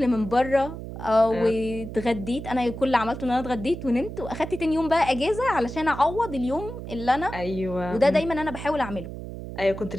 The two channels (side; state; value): right; noise; hum, 9 dB below the sound